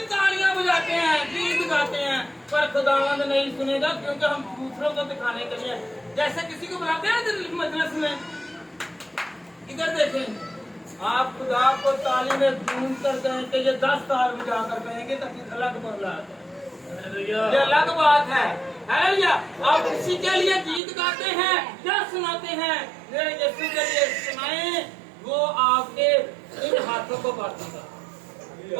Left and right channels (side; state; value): left; drops out; at 20.8 s